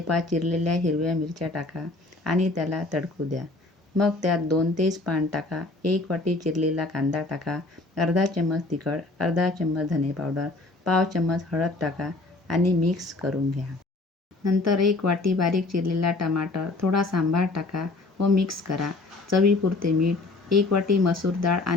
चिरलेल्या हिरव्या मिरच्या टाका आणि त्याला तडकू द्या. मग त्यात 2 तेजपान टाका, 1 वाटी चिरलेला कांदा टाका, अर्धा चम्मच तिखट, अर्धा चम्मच धने पावडर, पाव चम्मच हळद टाका आणि मिक्स करून घ्या. नंतर 1 वाटी बारीक चिरलेला टमाटर, थोडा सांबार टाका व मिक्स करा. चवीपुरते मीठ, 1 वाटी मसूर डाळ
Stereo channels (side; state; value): right; quieter; 3.1 dB